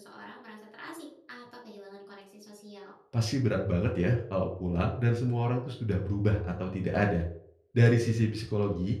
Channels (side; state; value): both; identical; correlation 1.00